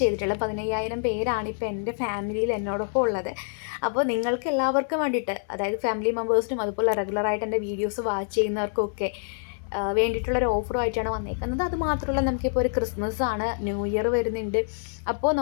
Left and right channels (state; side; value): silent; right; 61 dB below the other